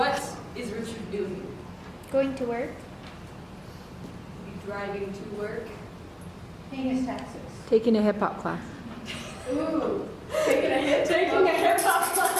is Richard doing? Going to work. Be driving to work. Paying his taxes. Taking a hip hop class. Ooh, taking a hip hop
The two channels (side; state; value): both; identical; correlation 1.00